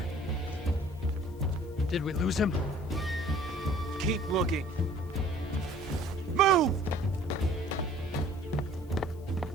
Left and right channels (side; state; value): left; noise; hiss, 28 dB below the sound